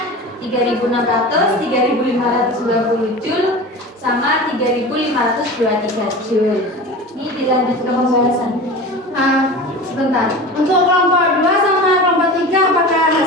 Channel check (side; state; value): both; normal; correlation 0.33